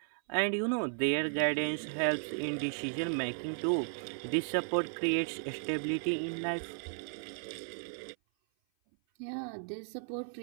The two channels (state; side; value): silent; left; 55 dB below the other